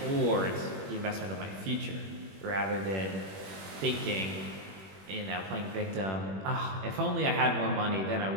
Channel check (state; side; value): late; left; 21 ms